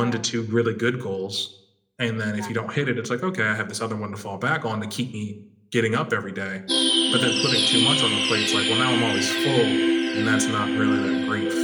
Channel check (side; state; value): both; identical; correlation 1.00